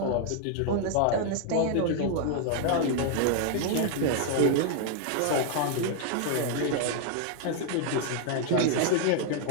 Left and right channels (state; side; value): different; both; correlation 0.00